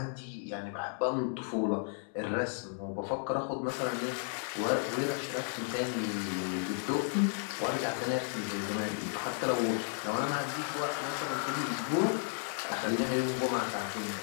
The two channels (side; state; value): right; silent; 55 dB below the other